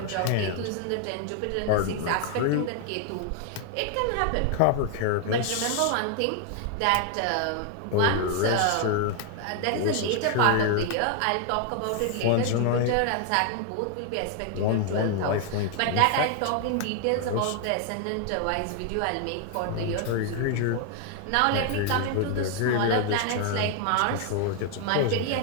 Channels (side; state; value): both; different; correlation 0.00